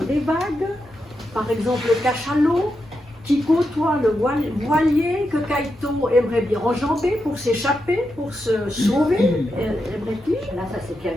des vagues, par exemple le cachalot, qui côtoie le voilier que Kaito aimerait bien enjamber pour s'échapper, pour se sauver, aimerait-il. Là, ça s'est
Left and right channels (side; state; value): both; normal; correlation 0.86